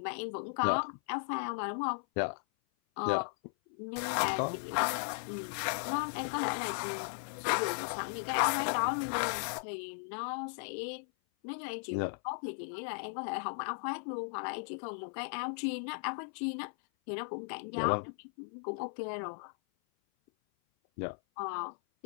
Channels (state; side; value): silent; right; 54 dB below the other